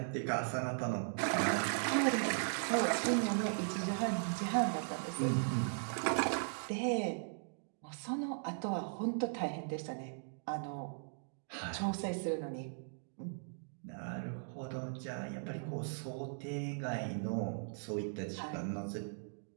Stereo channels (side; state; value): left; silent; digital silence